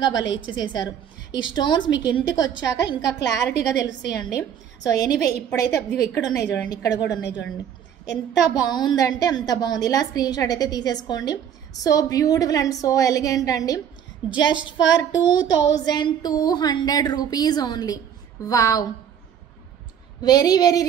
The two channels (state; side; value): quieter; left; 8.8 dB